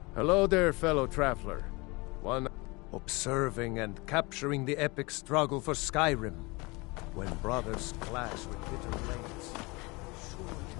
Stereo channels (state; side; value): quieter; right; 25.7 dB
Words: Hello there, fellow traveler. One observing and capturing the epic struggle for Skyrim, when brothers clash with bitter blades. Surely